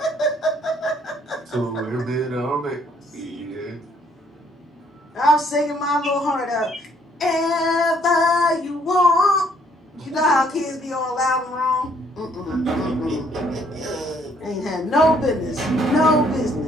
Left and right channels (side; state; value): both; normal; correlation 0.66